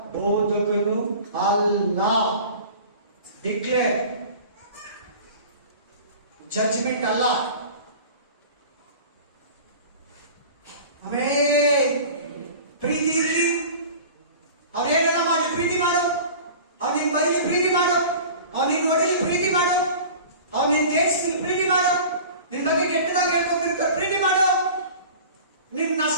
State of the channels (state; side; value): inverted; both; correlation -0.40